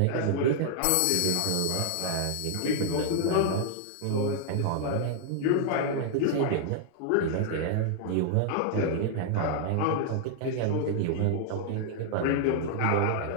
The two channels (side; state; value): both; different; correlation -0.01